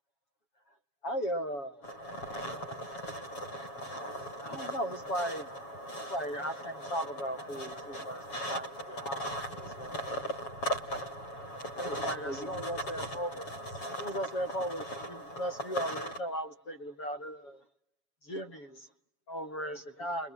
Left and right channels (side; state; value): right; late; 7.2 ms